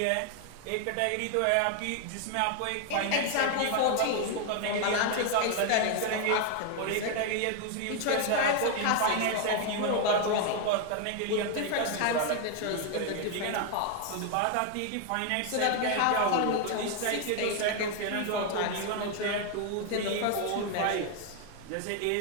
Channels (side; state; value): both; different; correlation 0.01